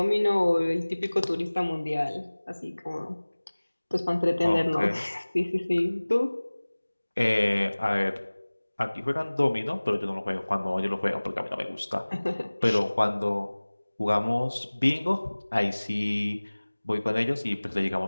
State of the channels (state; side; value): inverted; both; correlation -1.00